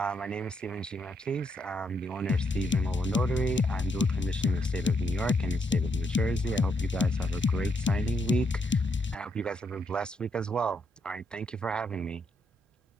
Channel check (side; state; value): both; normal; correlation 0.77